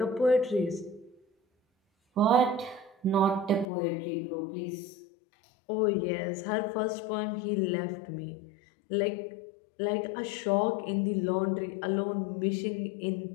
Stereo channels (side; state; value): right; drops out; at 3.7 s